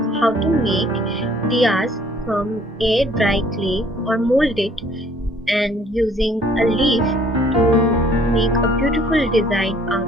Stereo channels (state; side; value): normal; both; correlation 0.58